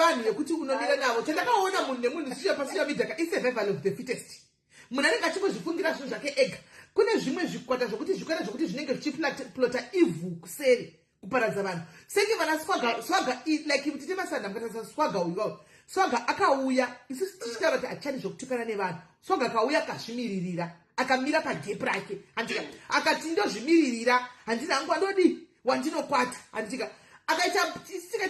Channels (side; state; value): both; identical; correlation 1.00